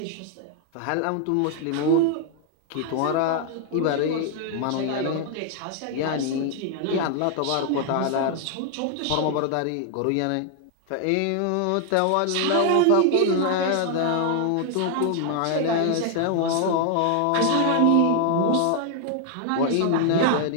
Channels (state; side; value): different; both; correlation 0.00